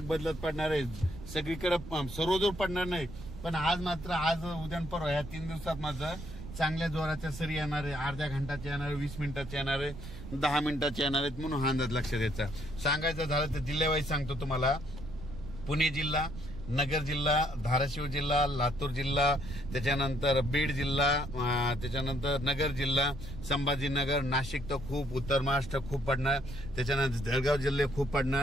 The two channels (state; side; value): noise; right; rumble, 12 dB below the sound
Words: बदलत पडणार आहेत. सगळीकडे सर्वजोर पडणार नाही, पण आज मात्र आज उद्या परवा या 3 दिवसात मात्र चांगल्या जोराच्या सरी येणार आहे. अर्ध्या घंटाच्या येणार आहे, 20 मिनिटाच्या येणार आहे, 10 मिनिटाच्या येणार आहेत. म्हणून हा अंदाज लक्षात द्यायचा. सांगायचं झालं तर जिल्ह्यावाईज सांगतो तुम्हाला. पुणे जिल्हा, नगर जिल्हा, धाराशिव जिल्हा, लातूर जिल्हा, त्याच्यानंतर बीड जिल्हा, त्याच्यानंतर नगर जिल्हा, संभाजीनगर, नाशिक तर खूप, उत्तर महाराष्ट्र खूप पडणार, त्याच्यानंतर जळगाव जिल्हे खूप